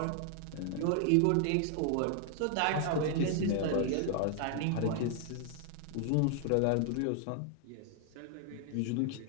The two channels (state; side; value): different; both; correlation 0.00